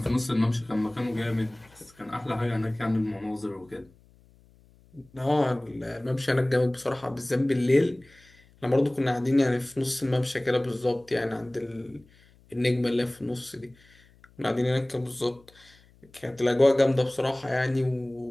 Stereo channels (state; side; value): noise; left; hum, 29 dB below the sound